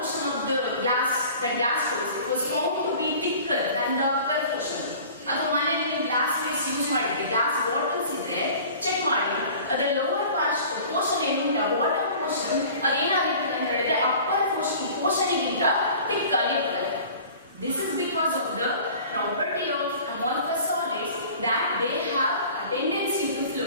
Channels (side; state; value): both; inverted; correlation -0.44